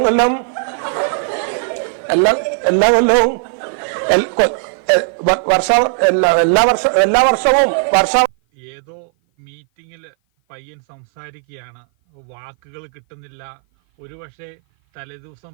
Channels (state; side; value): silent; left; 56 dB below the other